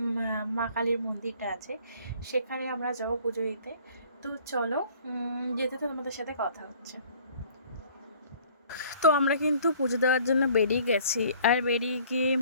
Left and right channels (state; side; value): inverted; both; correlation -0.54